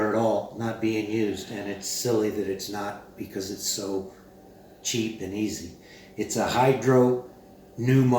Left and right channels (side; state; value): both; identical; correlation 1.00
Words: at all, not being used, and it's silly that it's not because it's so cheap and easy. It's a